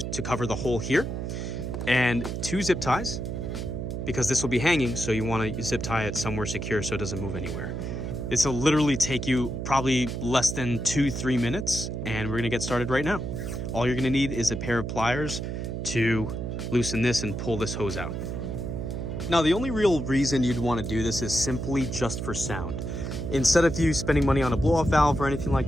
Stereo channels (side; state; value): right; noise; hum, 4 dB below the sound